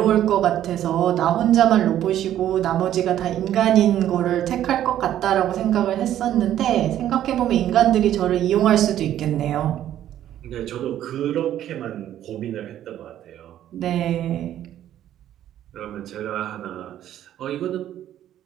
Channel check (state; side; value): quieter; left; 11.7 dB